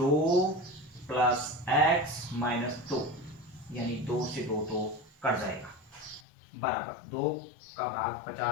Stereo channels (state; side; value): drops out; right; at 6.2 s